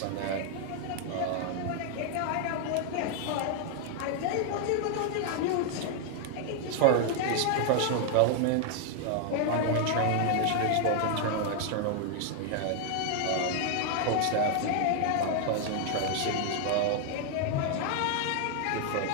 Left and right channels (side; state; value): both; different; correlation 0.00